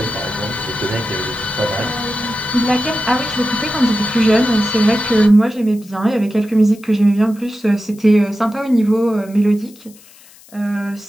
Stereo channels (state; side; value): noise; left; hiss, 24 dB below the sound